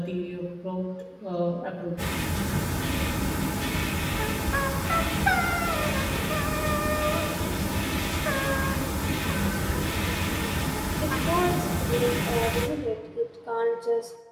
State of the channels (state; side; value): identical; both; correlation 1.00